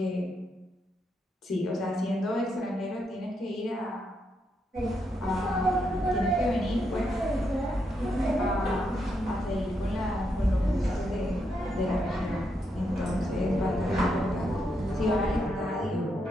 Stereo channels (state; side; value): normal; both; correlation 0.80